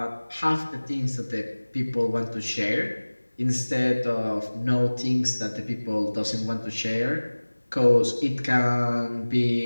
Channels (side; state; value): both; inverted; correlation -1.00